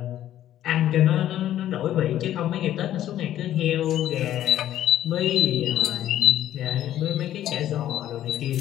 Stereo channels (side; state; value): right; quieter; 12.2 dB